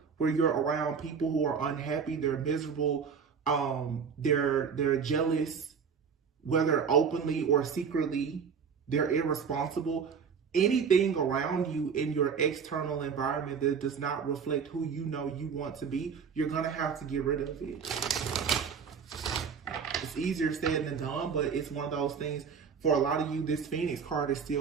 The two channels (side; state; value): left; quieter; 6.3 dB